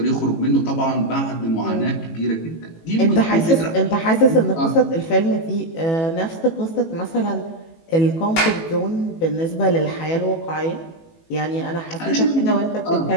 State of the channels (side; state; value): right; late; 18 ms